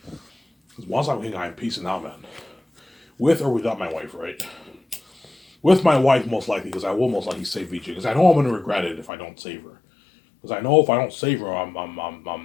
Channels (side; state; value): right; drops out; at 9.1 s